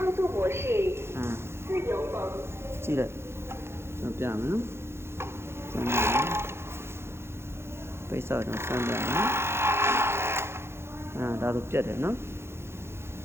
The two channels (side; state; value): left; late; 0.12 ms